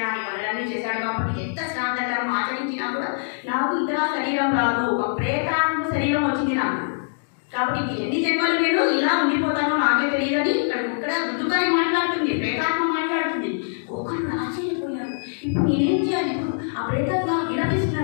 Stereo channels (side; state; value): right; silent; digital silence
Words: పనులన్నీ చేశాడు. కాబట్టి ఎంత శ్రాంతకరం ఆచరించినా కూడా నాకు ఇతర శరీరం రాదు, ఒక ప్రేతాత్మ శరీరం వచ్చింది నాకు. కాబట్టి ఎన్ని జన్మలు నేను ఇలా ఉండిపోతానో నాకే తెలియదని ఇక్కడ దుందుకారి మాట్లాడుతుంది, ప్రేతాత్మ మాట్లాడుతుంది. ఒకరు ఆశ్చర్యపోయాడు. ఇప్పుడు నేనేం చేయాలి? ఆ ప్రేతాత్మ